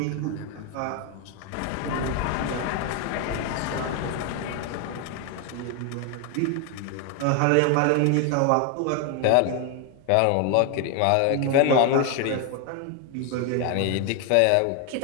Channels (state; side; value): different; both; correlation 0.01